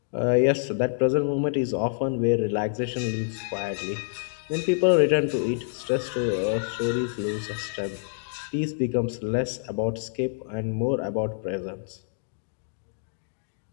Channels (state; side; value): silent; right; digital silence